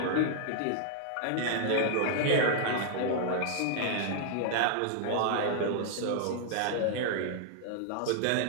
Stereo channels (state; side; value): different; both; correlation 0.00